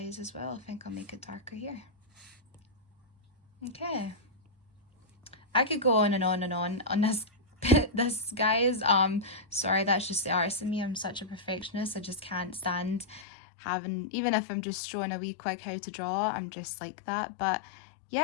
as well. I think I'll make it darker here. Okay. I could go on and on and on this this, guys. Sorry, that's just the artist in me. I'm such a perfectionist. I just can't stand having, even if I'm just showing a wee quick how to draw, I'm just like that. But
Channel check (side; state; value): right; drops out; at 13.2 s